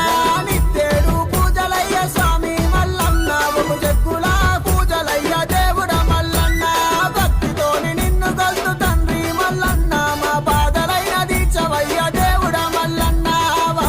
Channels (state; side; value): identical; both; correlation 1.00